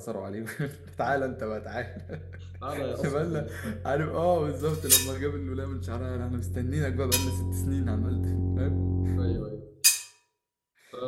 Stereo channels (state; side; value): identical; both; correlation 1.00